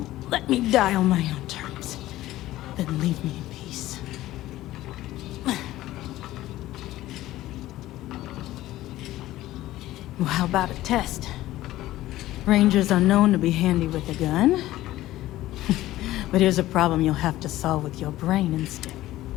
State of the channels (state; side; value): quieter; right; 15.6 dB